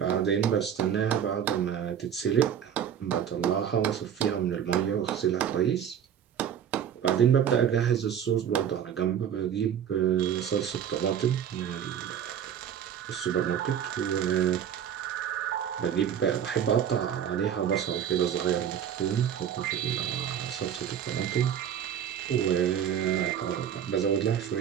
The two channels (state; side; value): quieter; left; 8.9 dB